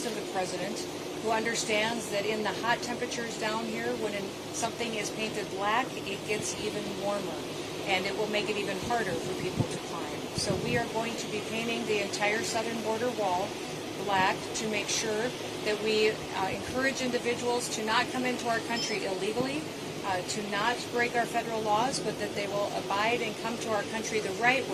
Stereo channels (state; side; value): identical; both; correlation 1.00